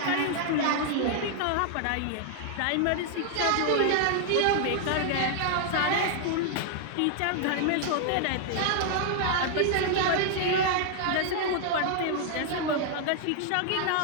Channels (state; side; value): different; both; correlation 0.00